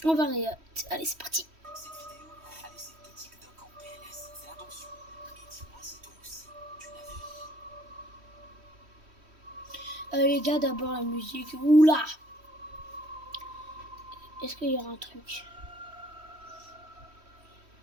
va aller. Allez, c'est parti. Cette vidéo a laissé tout TikTok en PLS. Fais attention. Et dis-moi si toi aussi, tu l'as vu. Les gars, d'abord la musique. Oula. Est-ce qu'il y aura un truc?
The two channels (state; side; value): late; left; 3.1 ms